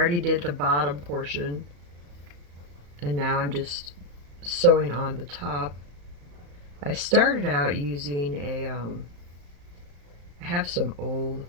did the bottom portion, and now I'm just sewing on the top. I started out using I have some old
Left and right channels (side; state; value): left; late; 35 ms